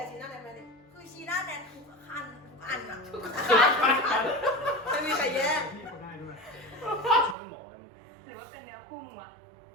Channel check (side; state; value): left; drops out; at 7.4 s